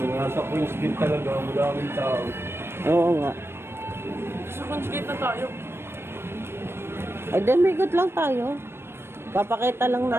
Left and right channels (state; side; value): late; left; 0.12 ms